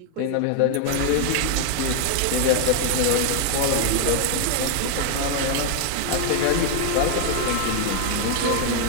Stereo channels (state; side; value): different; both; correlation 0.01